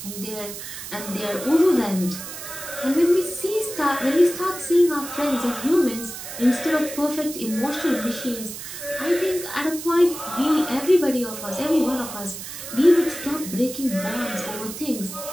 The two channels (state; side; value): noise; right; hiss, 10 dB below the sound